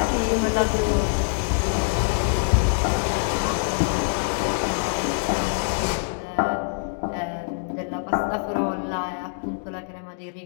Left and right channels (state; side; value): silent; right; digital silence